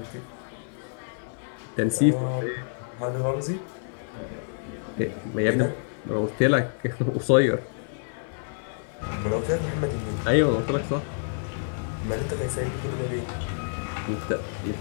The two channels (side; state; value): right; silent; 60 dB below the other